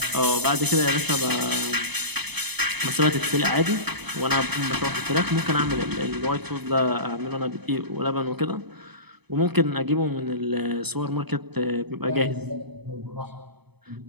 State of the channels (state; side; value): late; left; 0.98 ms